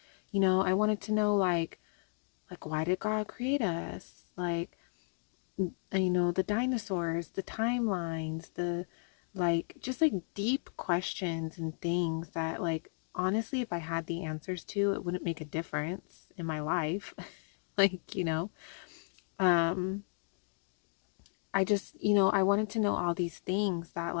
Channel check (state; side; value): silent; right; digital silence